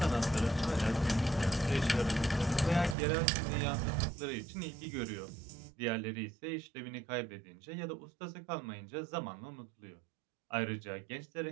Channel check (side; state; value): left; drops out; at 3.0 s